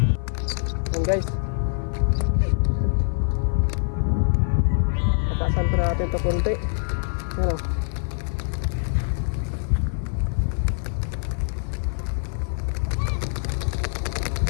natin to konti. Ano?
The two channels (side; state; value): right; silent; 55 dB below the other